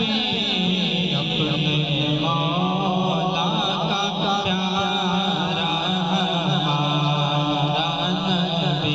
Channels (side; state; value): both; identical; correlation 1.00